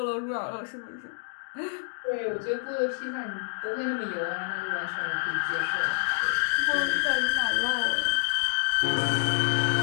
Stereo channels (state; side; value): silent; right; digital silence